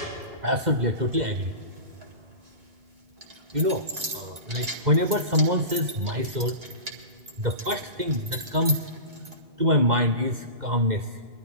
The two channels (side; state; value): left; late; 2.1 ms